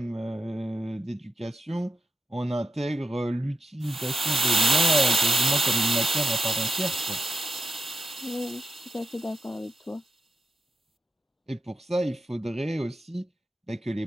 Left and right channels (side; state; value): both; normal; correlation 0.87